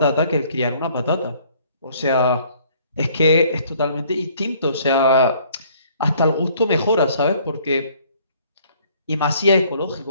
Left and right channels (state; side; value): inverted; both; correlation -0.60